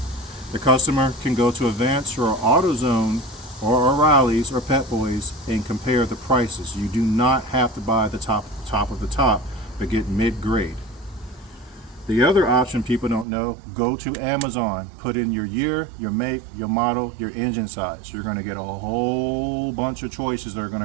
The customer can go to Advance or AutoZone or O'Reilly's or Pet Boys and compare the prices. You do not have to buy the top of the top, but get mid-grade. The other option people don't know, go to Amazon, put in your year, your make, your model, your engine size. You're going to get a whole bunch of choices that are going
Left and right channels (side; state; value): left; drops out; at 13.2 s